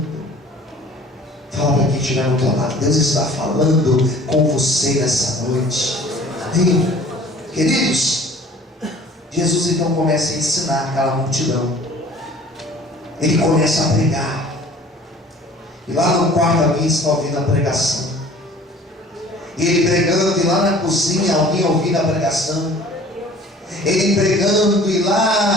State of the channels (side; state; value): both; normal; correlation 0.49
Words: Fala para quem estiver no teu lado. Deus está falando com você nessa noite. Amém? Queridos, Jesus então começa a ensinar aquela multidão. Ele começa a pregar. E lá no quarto alguém está ouvindo a pregação. E ele pregando, e lá na cozinha alguém ouvindo a pregação. Ele pregando, e